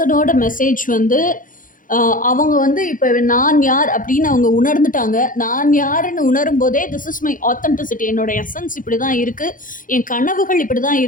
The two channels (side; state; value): right; late; 0.39 ms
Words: மெசேஜ் வந்து அவங்க வந்து இப்போ நான் யார் அப்படின்னு அவங்க உணர்ந்துட்டாங்க. நான் யாருன்னு உணரும் போதே திஸ் இஸ் மை ஆத்தென்டிசிட்டி, என்னோட எசன்ஸ் இப்படி தான் இருக்குது, என் கனவுகள் இப்படி தான்